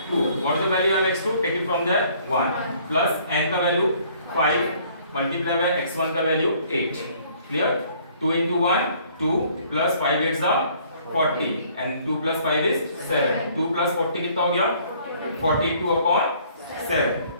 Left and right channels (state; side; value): inverted; both; correlation -0.59